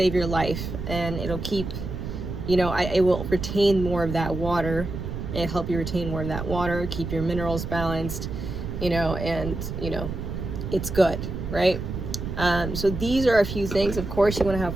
your life, and it'll keep, it will retain more of that water. It'll help you retain more of that water, keep your minerals balanced, and, it's good, right? So these are a few things. Of course, you want to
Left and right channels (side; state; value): right; noise; rumble, 6 dB below the sound